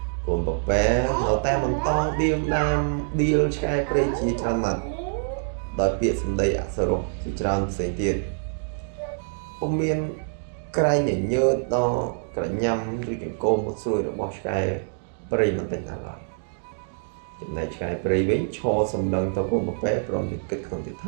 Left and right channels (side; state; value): left; silent; digital silence